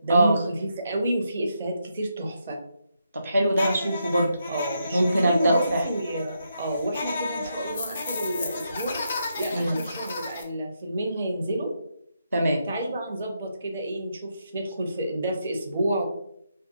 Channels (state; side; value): inverted; both; correlation -0.81